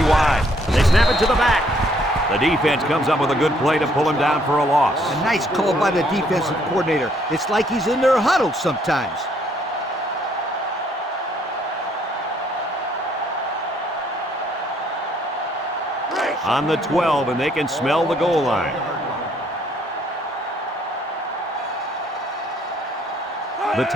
wide. They snap it to the back. The defense comes up with a good play to pull him down for a loss. A nice call by the defensive coordinator. It's like he's in their huddle sometimes. On the 12, and they can smell the goal line. The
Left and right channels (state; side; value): normal; both; correlation 0.66